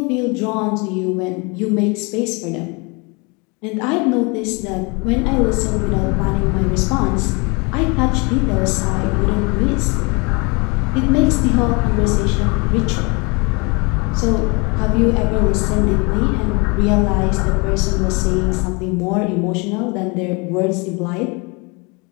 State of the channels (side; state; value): right; quieter; 29.6 dB